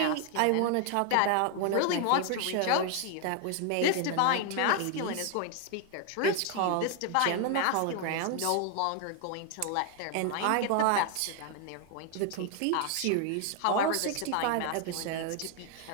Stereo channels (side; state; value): both; different; correlation 0.00